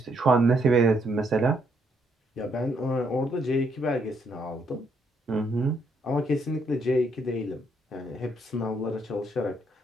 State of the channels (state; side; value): normal; both; correlation 0.73